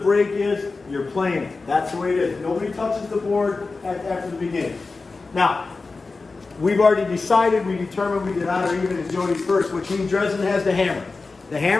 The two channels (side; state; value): right; quieter; 3.9 dB